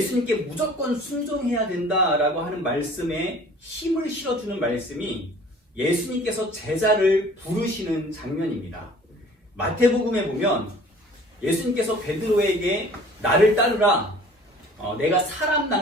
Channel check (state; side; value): normal; both; correlation 0.49